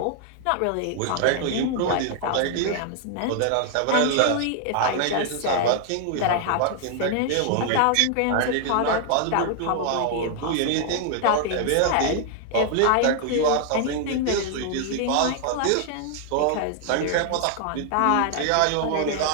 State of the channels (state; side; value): different; both; correlation 0.00